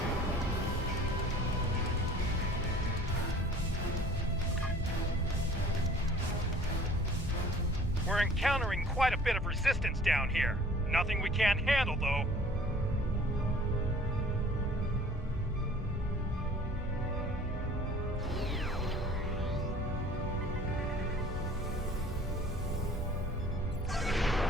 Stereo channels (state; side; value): normal; both; correlation 0.50